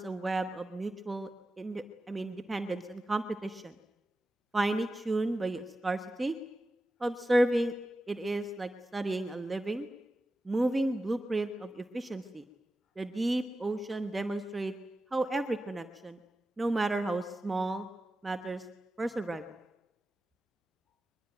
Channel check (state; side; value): normal; both; correlation 0.93